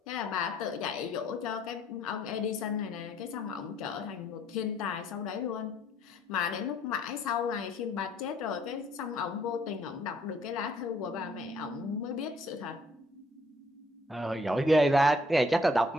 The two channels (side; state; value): both; normal; correlation 0.64